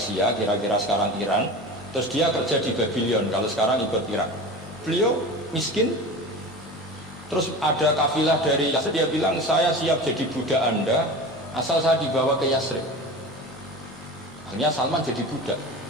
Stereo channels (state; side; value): normal; both; correlation 0.32